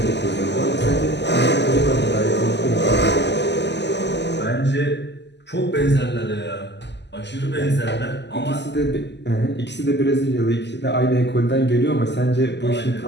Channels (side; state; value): right; late; 0.50 ms